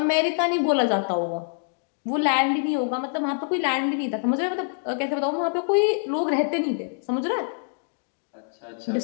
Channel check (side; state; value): right; silent; digital silence